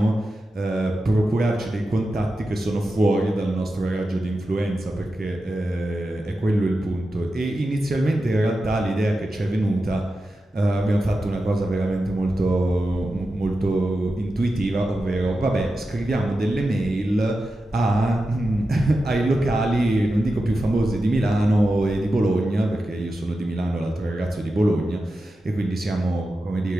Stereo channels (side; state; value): both; normal; correlation 0.91